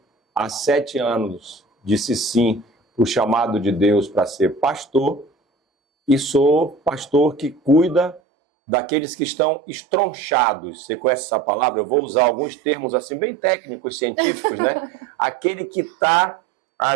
Há 7 anos disse sim para o chamado de Deus para ser pastor. E sou pastor que cuida daqueles que estão estronchados. Você conhece essa palavra? Eu vou usar alguns termos assim bem técnicos, científicos, né? Aquele que está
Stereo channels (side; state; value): left; drops out; at 8.2 s